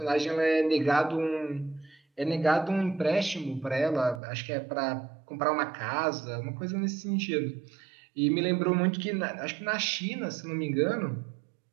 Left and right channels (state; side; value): drops out; left; at 4.2 s